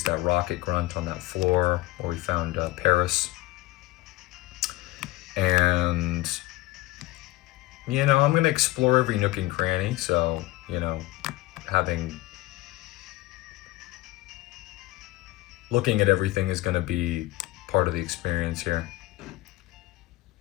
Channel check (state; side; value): quieter; right; 18.6 dB